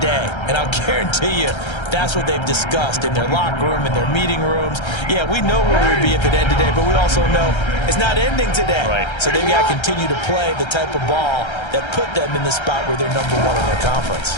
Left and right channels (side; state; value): right; late; 1.3 ms